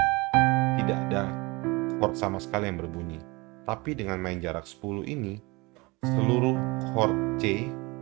tidak ada chord sama sekali yang berbunyi. Tapi dengan main jarak 10 ini, seluruh chord C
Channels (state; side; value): quieter; left; 24.9 dB